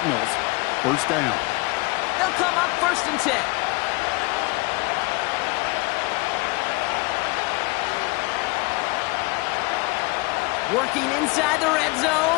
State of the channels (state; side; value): quieter; right; 25.5 dB